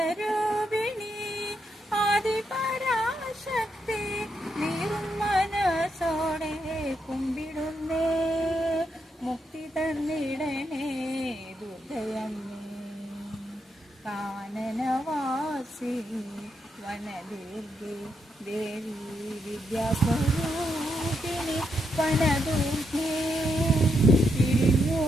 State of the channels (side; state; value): both; normal; correlation 0.80